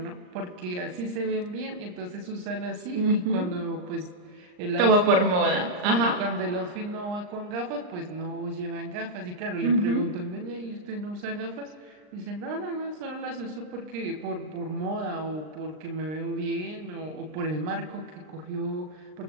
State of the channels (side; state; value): left; late; 39 ms